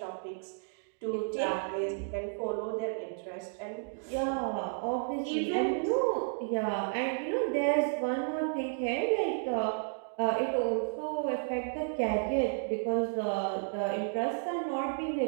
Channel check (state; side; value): silent; left; digital silence